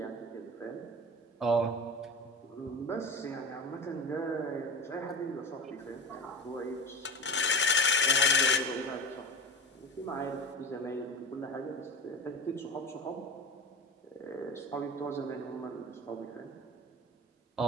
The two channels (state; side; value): normal; both; correlation 0.29